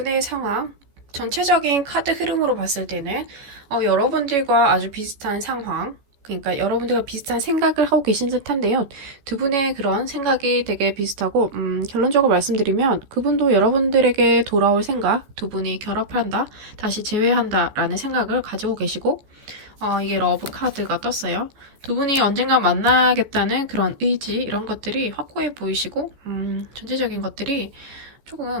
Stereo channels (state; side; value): late; left; 14 ms